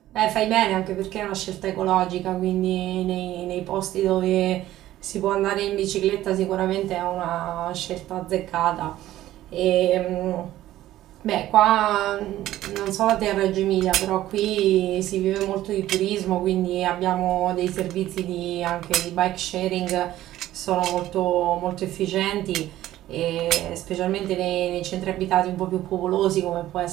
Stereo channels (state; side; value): quieter; left; 14.2 dB